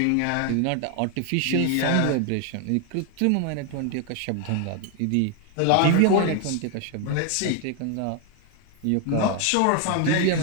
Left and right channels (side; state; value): both; different; correlation 0.01